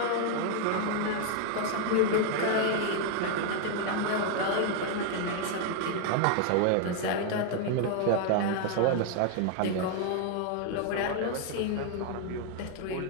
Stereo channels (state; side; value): different; both; correlation 0.00